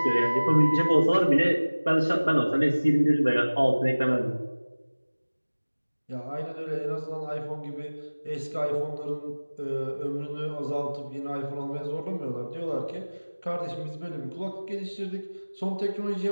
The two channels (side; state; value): both; inverted; correlation -1.00